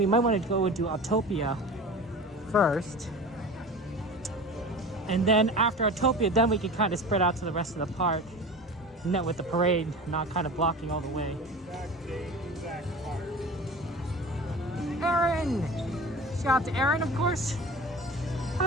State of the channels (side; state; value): both; normal; correlation 0.35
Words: might want to go and do Autotopia first. And then after Autotopia, then we can kind of spread out to the rest of the park. And then with the parade not kind of blocking all the way. Aaron! Shout out to Aaron, of course.